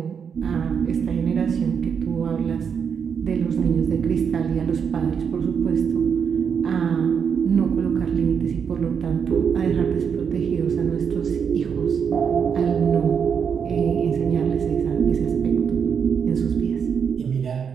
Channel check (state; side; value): quieter; left; 6.9 dB